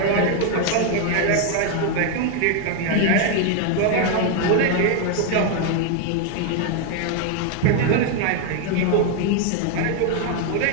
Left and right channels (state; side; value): different; both; correlation 0.01